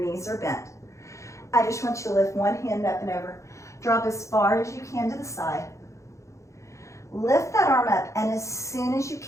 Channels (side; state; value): right; late; 0.15 ms